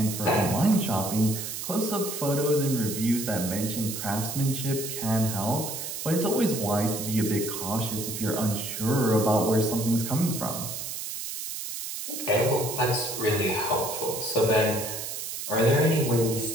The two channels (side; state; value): right; noise; hiss, 6 dB below the sound